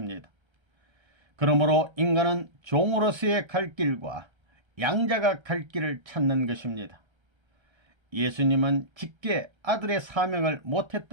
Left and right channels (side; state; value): left; late; 1.3 ms